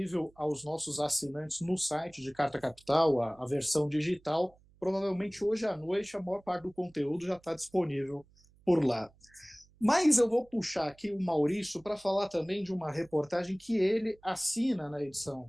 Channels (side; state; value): right; noise; hum, 30 dB below the sound